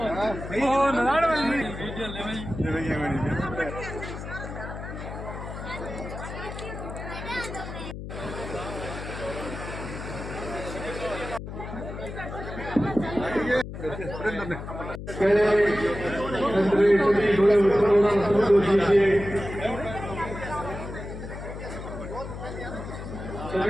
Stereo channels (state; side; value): noise; left; hum, 9 dB below the sound